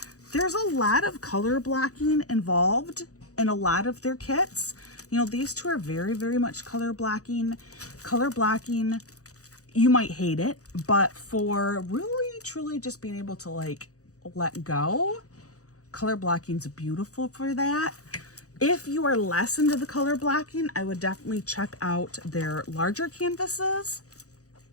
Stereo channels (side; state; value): right; late; 0.66 ms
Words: there's a lot of color blocking involved in a lot of their kits. You know, these two are very, very much color blocking. Color blocking, you might hate it, but for really, truly just being able to, like, let go, color blocking's beautiful for that. If you are less into the color blocking, I would definitely check out their larger canvases,